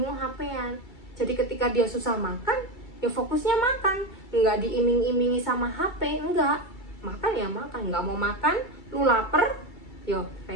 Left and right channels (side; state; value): right; late; 2.3 ms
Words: HP-an. Jadi ketika dia susah makan ya fokusnya makan, nggak diiming-imingi sama HP, enggak, makan ya makan. Nggak mau makan, lu lapar, yo